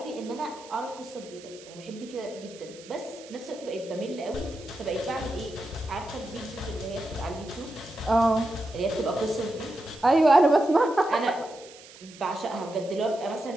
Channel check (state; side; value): noise; right; hiss, 20 dB below the sound